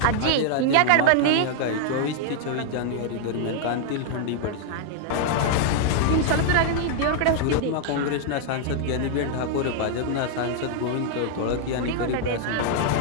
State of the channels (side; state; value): both; different; correlation 0.00